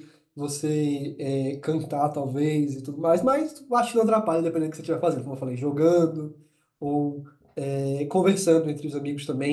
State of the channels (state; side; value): identical; both; correlation 1.00